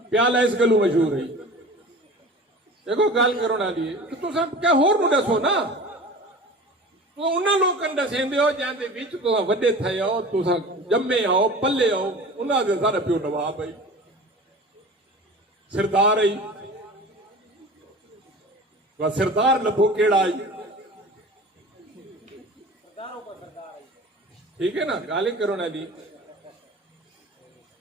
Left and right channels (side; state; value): both; normal; correlation 0.38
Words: प्याला इस गलू मशहूर है देखो गल करो ना लिए तो तुम क्या होर नु दसो ना तो उन्होंने लोगों दसेंदे हो जाते विच तुसा वड्डे थे हो तुसा जम्मे आओ पल्ले आओ उन्होंने सारा प्यो नवाब आई सरदार आई वह सरदार लभो केड़ा आई ठीक है ना गाली करो ना दी